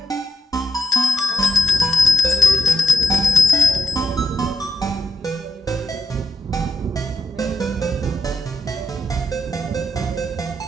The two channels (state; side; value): normal; both; correlation 0.80